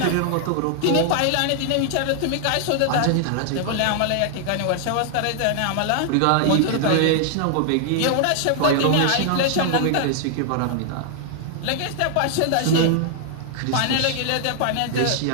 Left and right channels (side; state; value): both; different; correlation 0.00